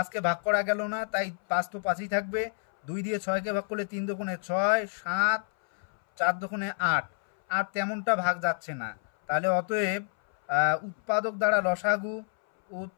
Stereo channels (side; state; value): right; silent; 59 dB below the other